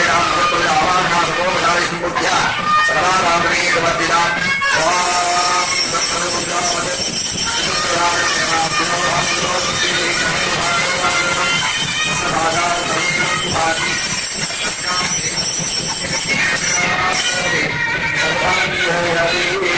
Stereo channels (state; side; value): identical; both; correlation 1.00